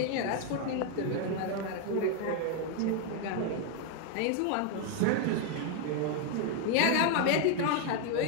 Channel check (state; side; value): different; both; correlation 0.01